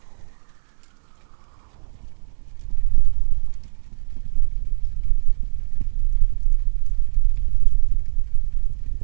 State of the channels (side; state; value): left; silent; 66 dB below the other